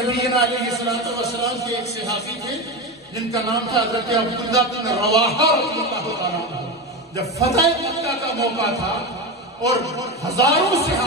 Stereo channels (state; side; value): normal; both; correlation 0.19